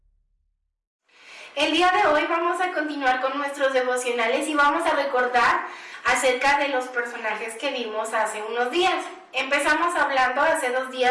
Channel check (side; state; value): both; identical; correlation 1.00